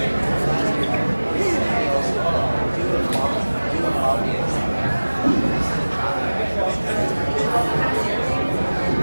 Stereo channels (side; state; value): both; inverted; correlation -1.00